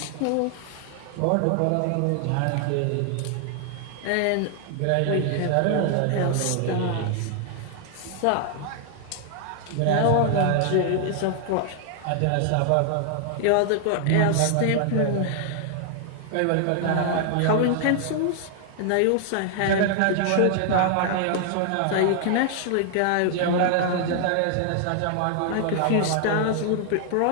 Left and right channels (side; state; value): both; different; correlation 0.00